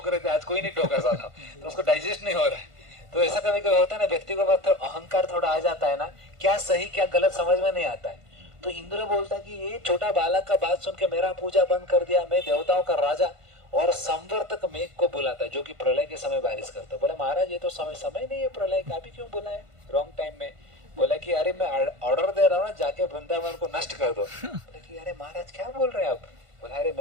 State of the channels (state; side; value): late; left; 1.5 ms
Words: रहे थे, आज कोई नहीं ठोका सलाम, तो उसको डाइजेस्ट नहीं हो रहा है। तो ऐसा कभी कभी होता है ना, व्यक्ति को अहंकार थोड़ा आ जाता है ना, क्या सही क्या गलत समझ में नहीं आता है। तो इंद्र बोलता कि ये छोटा बालक का बात सुन के मेरा पूजा बंद कर दिया, मैं देवताओं का राजा और संवर्तक मेघ को बुलाता है जो कि प्रलय के समय बारिश करता है। बोला महाराज ये तो समय नहीं है प्रलय का, अभी क्यों बुलाए रॉन्ग टाइम में। बोला कि अरे मैं ऑर्डर दे रहा हूँ ना, जाके वृंदावन को नष्ट कर दो। बोला कि अरे महाराज क्या बोल रहे हैं आप। बोला अरे